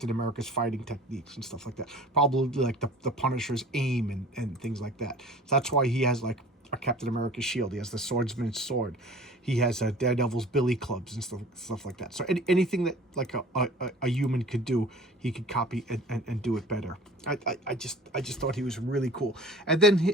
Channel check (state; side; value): normal; both; correlation 0.44